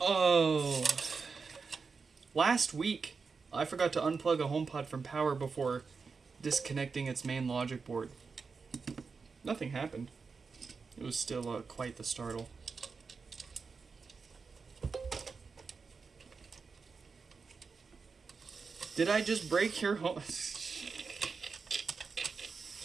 Oh. Last week, I forgot to unplug a HomePod from power before disconnecting its main logic board. Nothing happened. It was still quite the startle. Did I just break your home?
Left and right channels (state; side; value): quieter; left; 4.9 dB